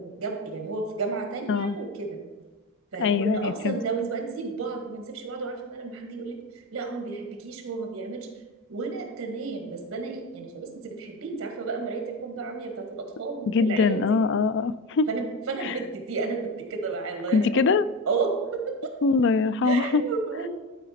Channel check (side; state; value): both; normal; correlation 0.23